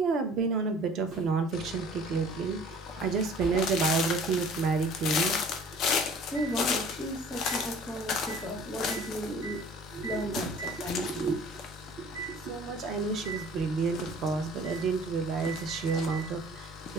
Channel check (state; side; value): normal; both; correlation 0.49